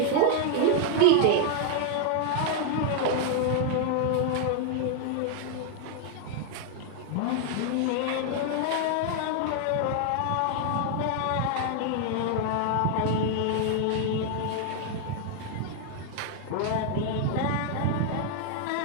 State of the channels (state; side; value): different; both; correlation 0.00